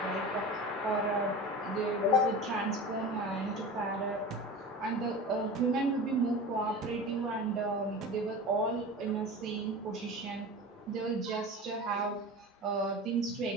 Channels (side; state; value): both; normal; correlation 0.33